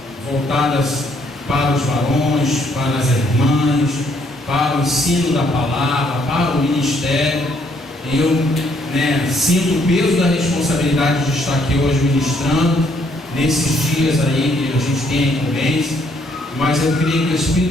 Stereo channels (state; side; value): normal; both; correlation 0.69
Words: voltadas para os varões, para as irmãs, para o ensino da palavra, para o ministério. Eu sinto o peso da responsabilidade de estar aqui hoje ministrando, nesses dias aí que a gente tem a incumbência, mas eu creio que o